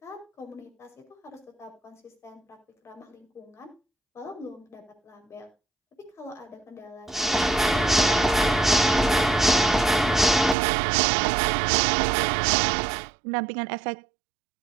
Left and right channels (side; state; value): left; drops out; at 10.6 s